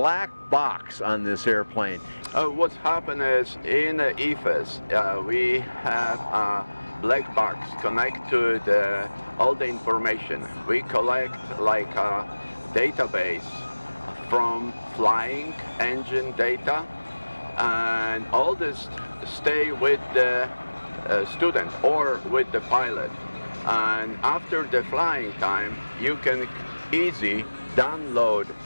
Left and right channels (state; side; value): inverted; both; correlation -1.00